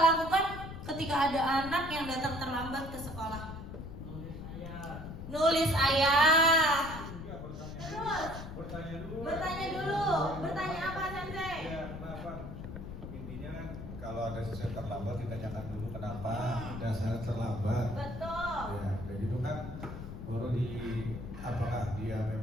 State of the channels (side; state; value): left; noise; rumble, 9 dB below the sound